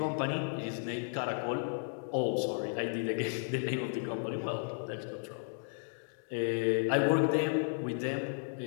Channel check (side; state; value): right; silent; digital silence